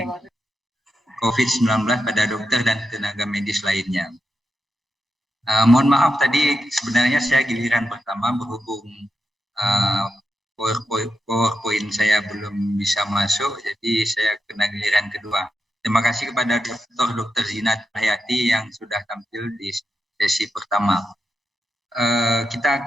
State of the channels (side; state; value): both; normal; correlation 0.87